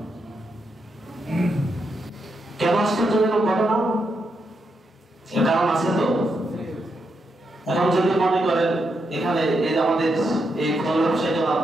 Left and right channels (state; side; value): normal; both; correlation 0.82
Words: কেন আশ্চর্যজনক ঘটনা এর কারণ আছে তো এখন যদি মনে করেন এখানে এই আমাদের এই